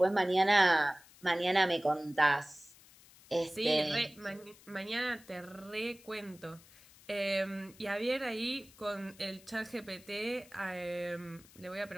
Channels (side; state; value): left; noise; hiss, 24 dB below the sound